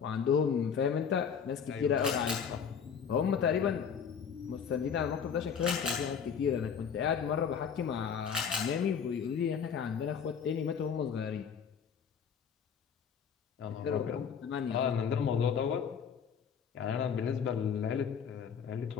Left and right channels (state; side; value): quieter; right; 7.1 dB